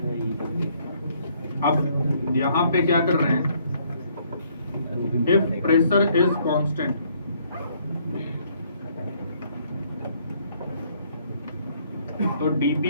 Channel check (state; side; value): inverted; both; correlation -0.66